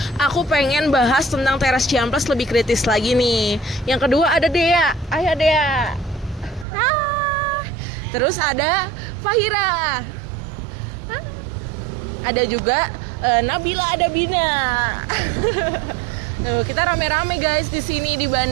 aku pengen bahas tentang Teras Ciamplas lebih kritis lagi nih. Yang kedua ada Dea. Ayo Dea. Hai. Terus ada Fahira. Ada juga Nabila, ada Bina. Kita rame-rame guys di sini di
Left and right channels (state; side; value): drops out; left; at 6.7 s